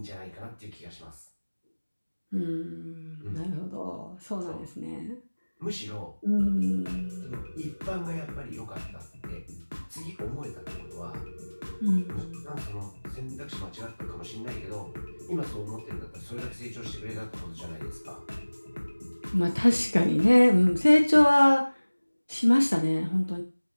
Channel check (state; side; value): inverted; both; correlation -1.00